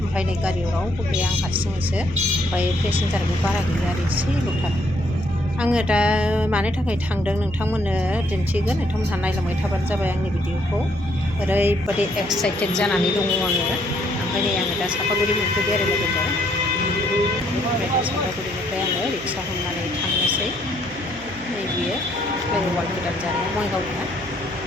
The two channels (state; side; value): noise; right; hum, 19 dB below the sound